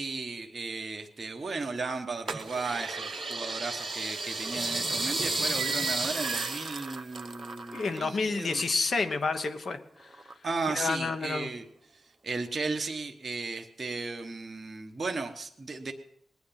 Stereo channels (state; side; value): normal; both; correlation 0.85